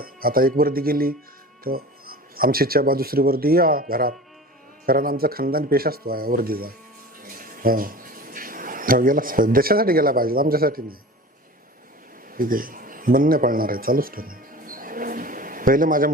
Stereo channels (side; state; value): both; normal; correlation 0.38